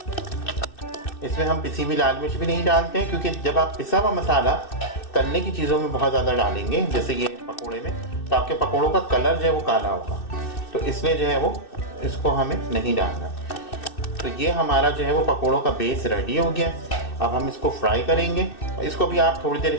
इसमें हम पिसी हुई लाल मिर्च भी नहीं डालते हैं, क्योंकि जब आप पिसा हुआ मसाला तलने की चीज़ों में बहुत ज़्यादा डालेंगे, जैसे ये पकोड़े में, तो आपके पकोड़ों का कलर जो है वो काला होगा, तो इसलिए जो है वो इसको हमें नहीं डालना। तो ये हमारा जो है वो पकोड़ों का बेस रेडी हो गया। अब हम इसको फ्राई करेंगे। इसको भी आप थोड़ी देर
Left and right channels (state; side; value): late; right; 2.6 ms